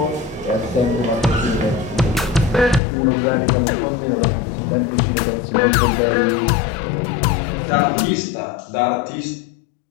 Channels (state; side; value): drops out; right; at 2.8 s